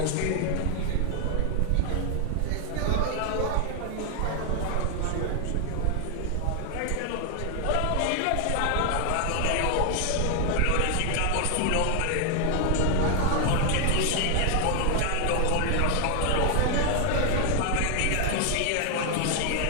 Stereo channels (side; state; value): both; different; correlation 0.00